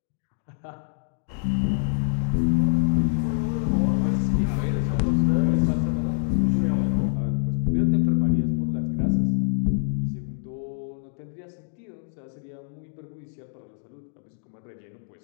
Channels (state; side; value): silent; right; digital silence